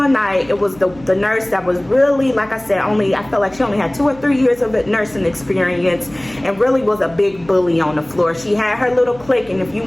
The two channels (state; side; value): noise; right; hum, 22 dB below the sound